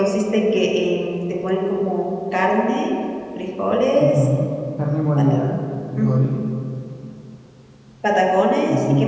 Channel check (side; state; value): both; identical; correlation 1.00